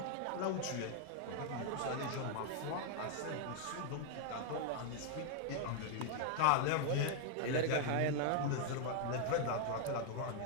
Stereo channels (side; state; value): both; different; correlation 0.00